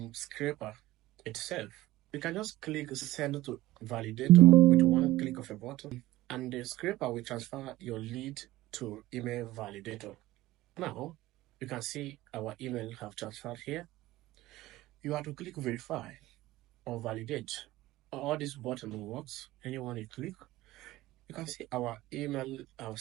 Scraper itself. You can just click send to validator with one click of a button, and the Scraper will transfer your lead to email validator. Now, you can see our email have transferred here. You have to click verify or validate. All this button works. Anyone you click, you can see our email have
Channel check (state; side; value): quieter; left; 16.5 dB